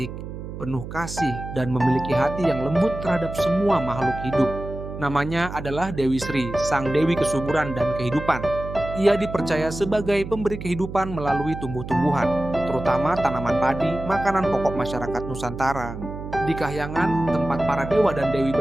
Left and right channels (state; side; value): noise; right; hum, 9 dB below the sound